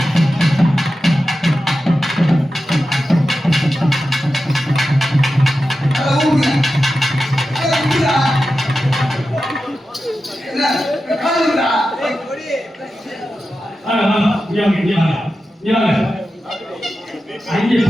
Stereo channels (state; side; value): normal; both; correlation 0.92